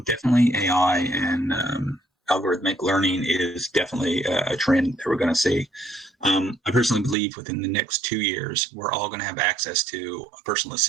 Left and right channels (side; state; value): left; drops out; at 7.2 s